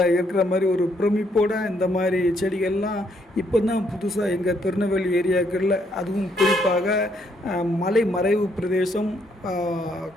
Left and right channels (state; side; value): normal; both; correlation 0.72